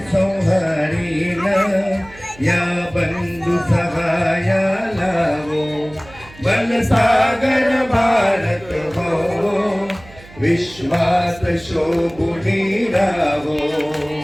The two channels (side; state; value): right; noise; hum, 21 dB below the sound